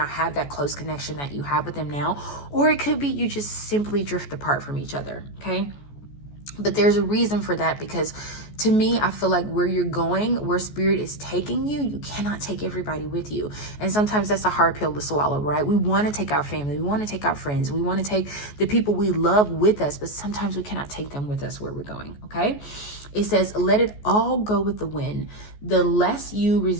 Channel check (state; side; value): late; right; 14 ms